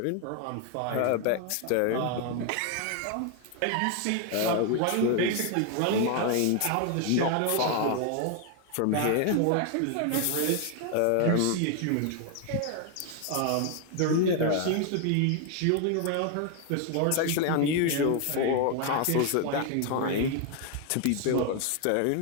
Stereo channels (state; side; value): different; both; correlation 0.01